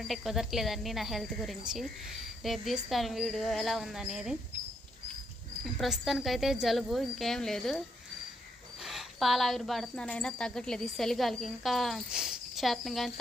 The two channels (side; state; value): both; normal; correlation 0.76